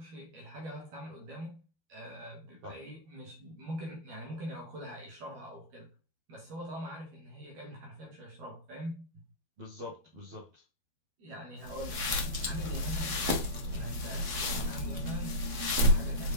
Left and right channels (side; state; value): left; late; 12 ms